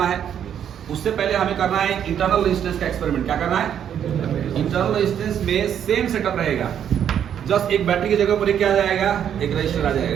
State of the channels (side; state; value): left; quieter; 9.2 dB